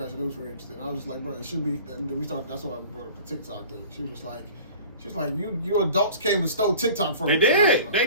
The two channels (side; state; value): both; inverted; correlation -0.43